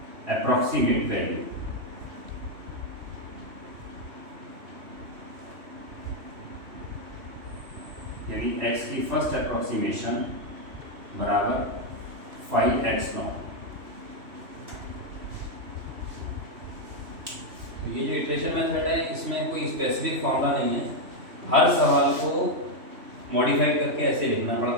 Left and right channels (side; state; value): left; late; 3.0 ms